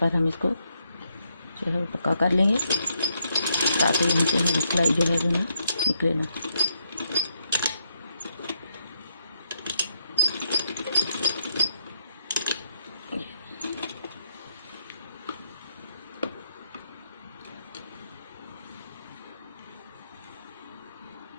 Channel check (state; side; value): inverted; both; correlation -0.78